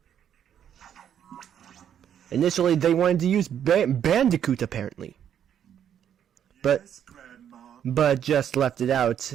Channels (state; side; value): quieter; left; 9.3 dB